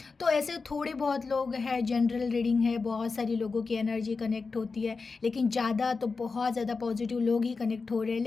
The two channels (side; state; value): right; quieter; 4.4 dB